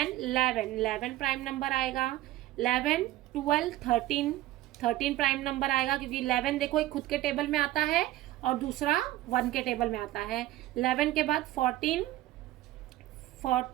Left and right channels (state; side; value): quieter; left; 15.5 dB